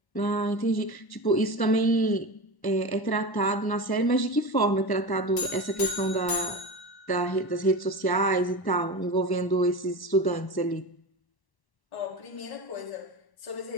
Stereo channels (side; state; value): right; late; 1.0 ms